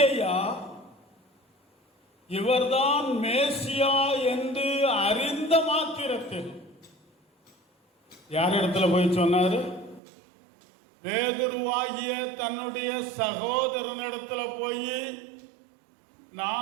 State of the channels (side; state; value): left; drops out; at 10.0 s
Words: இவர்தான் மேசியா என்று அறிந்த மாத்திரத்தில் யார் இடத்துல போய் சொன்னாரு? பேதுருவாகிய தன்னுடைய சகோதரனிடத்துல போய்